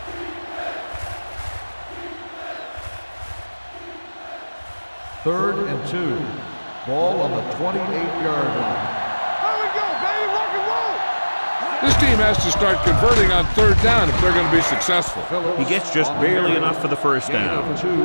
Third and 2. Ball on the 28-yard line. There we go, baby. Rock and roll. This team has to start converting on 3rd down if they're going to be successful. He gets just barely enough for the first down. Gain of 2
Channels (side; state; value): both; inverted; correlation -1.00